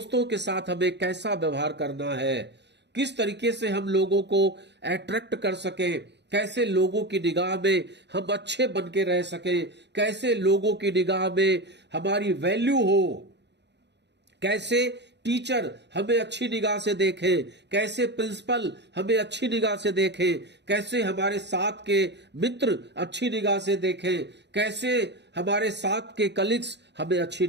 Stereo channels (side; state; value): left; late; 0.50 ms